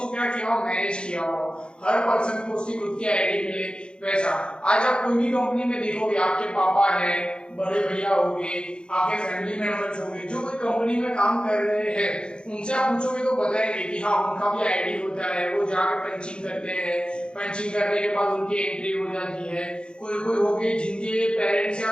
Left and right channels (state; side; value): late; right; 0.052 ms